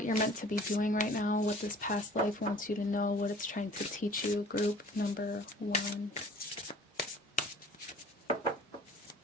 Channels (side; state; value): both; normal; correlation 0.49